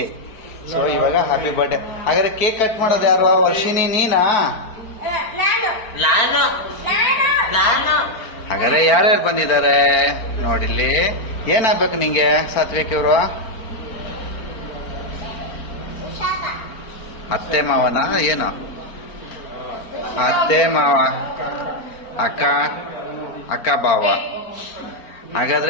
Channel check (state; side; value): late; right; 4.4 ms